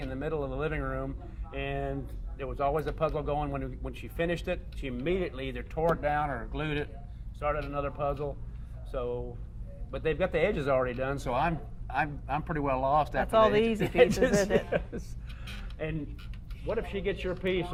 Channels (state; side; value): identical; both; correlation 1.00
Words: in the middle of the living room, and there was always a puzzle going. When she finished it, she immediately either tore it down or glued it, started another puzzle. So, but they've got the edges already done, so I'm pretty well lost after all the the easy edges. pieces, isn't it? Yes. And what if she gets your piece?